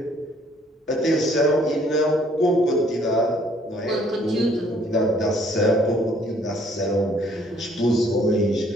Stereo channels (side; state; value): both; normal; correlation 0.62